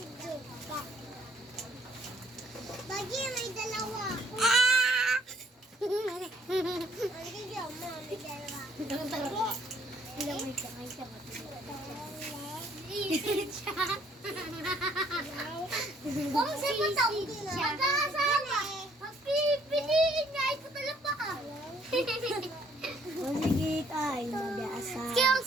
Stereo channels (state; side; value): normal; both; correlation 0.64